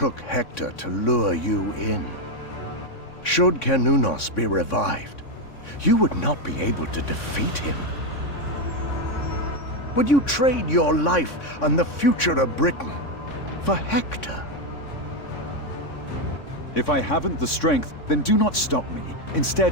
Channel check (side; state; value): right; late; 3.6 ms